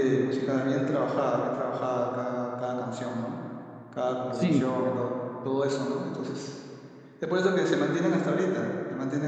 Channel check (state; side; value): identical; both; correlation 1.00